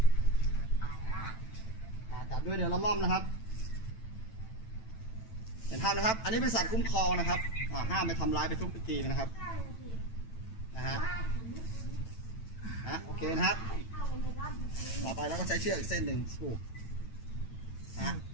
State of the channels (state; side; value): late; right; 9.0 ms